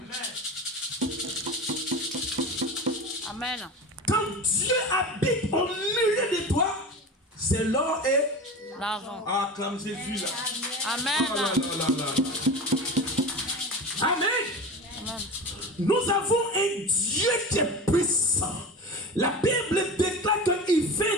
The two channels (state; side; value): normal; both; correlation 0.30